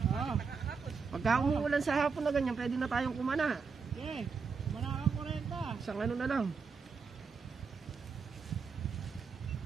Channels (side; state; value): left; quieter; 5.3 dB